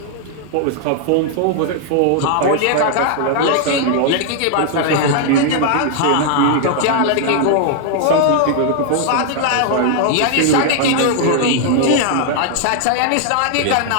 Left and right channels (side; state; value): both; different; correlation 0.00